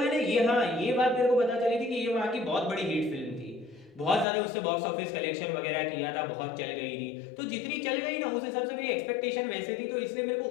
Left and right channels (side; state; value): right; drops out; at 4.2 s